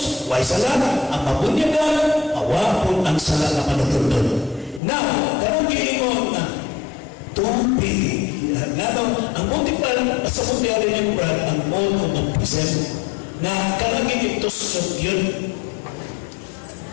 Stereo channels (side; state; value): right; drops out; at 4.8 s